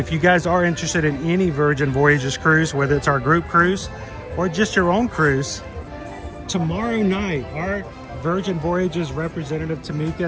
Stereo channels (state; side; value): identical; both; correlation 1.00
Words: you guys are interested in any Virgin Voyages cruise, whether it's our group cruise or just your own cruise, tomorrow night, our Virgin Voyages representative Tamika